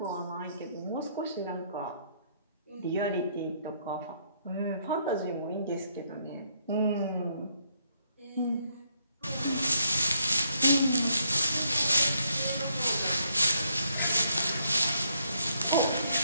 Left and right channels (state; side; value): inverted; both; correlation -0.72